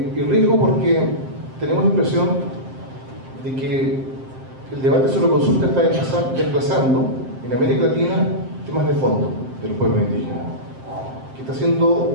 riesgo porque tenemos la impresión de que el debate sobre consulta está desplazando en América Latina temas de fondo de los pueblos indígenas, que está siendo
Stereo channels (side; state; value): left; late; 7.6 ms